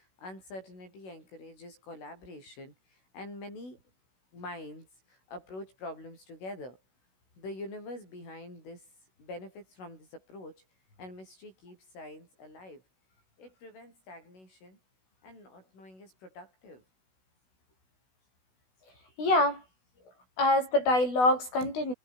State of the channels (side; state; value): right; late; 16 ms